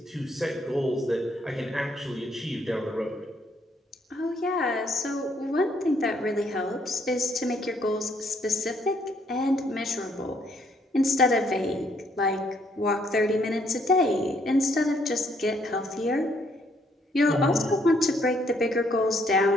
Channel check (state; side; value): normal; both; correlation 0.69